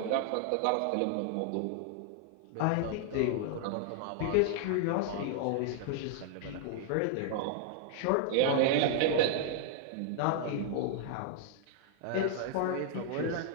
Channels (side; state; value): both; different; correlation 0.00